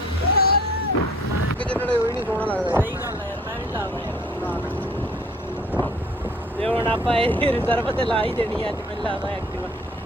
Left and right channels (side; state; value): both; normal; correlation 0.53